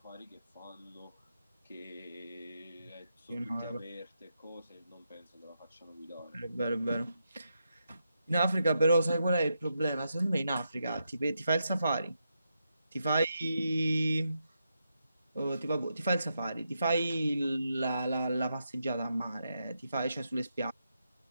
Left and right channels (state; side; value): inverted; both; correlation -0.84